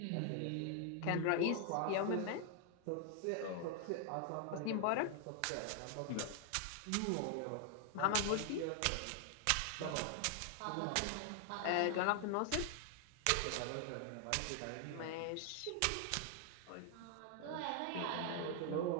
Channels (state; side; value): different; both; correlation 0.00